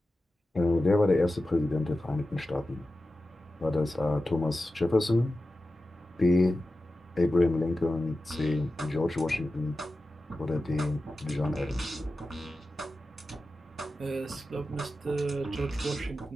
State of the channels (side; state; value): both; normal; correlation 0.93